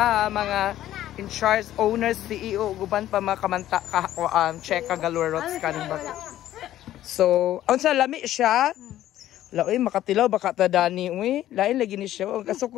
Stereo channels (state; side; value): quieter; right; 13.1 dB